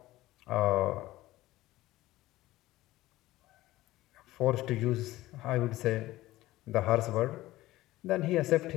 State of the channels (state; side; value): quieter; right; 17.0 dB